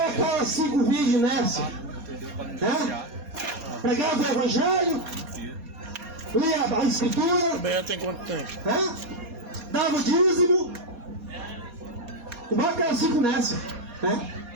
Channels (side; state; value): left; late; 4.2 ms